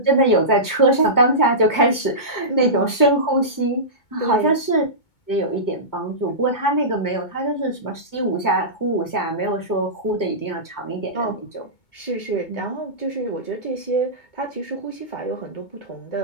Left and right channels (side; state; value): right; late; 2.2 ms